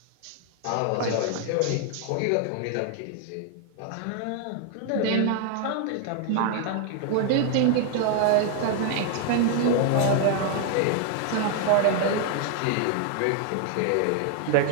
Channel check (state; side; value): different; both; correlation 0.00